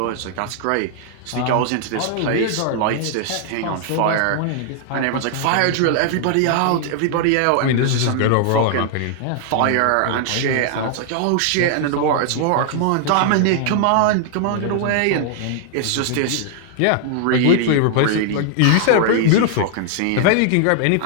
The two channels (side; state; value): both; different; correlation -0.01